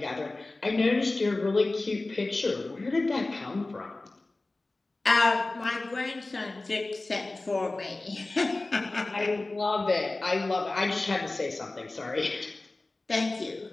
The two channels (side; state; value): right; quieter; 3.1 dB